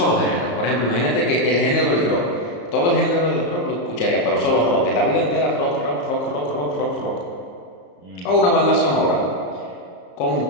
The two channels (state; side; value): late; right; 34 ms